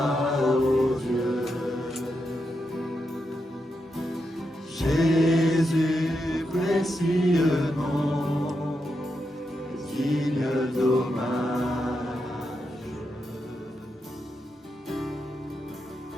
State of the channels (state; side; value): normal; both; correlation 0.85